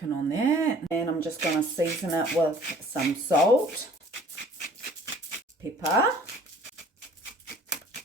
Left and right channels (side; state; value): both; normal; correlation 0.52